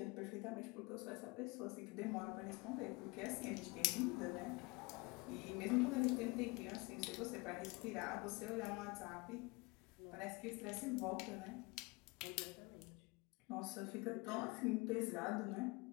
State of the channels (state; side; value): quieter; right; 25.9 dB